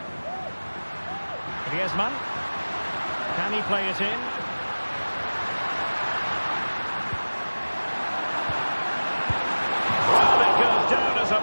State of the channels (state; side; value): inverted; both; correlation -1.00